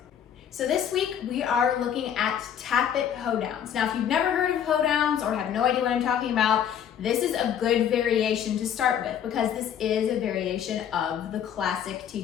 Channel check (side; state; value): right; quieter; 9.1 dB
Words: So this week we are looking at Tap It Hoedowns. Now, if you've never heard of Hoedowns or have no idea what I'm talking about, this is a good variation to start with because this is a variation of the classic